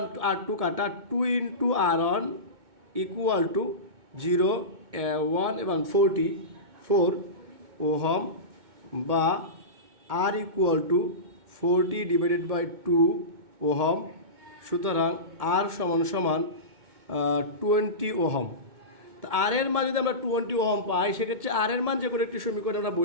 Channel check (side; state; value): left; late; 2.2 ms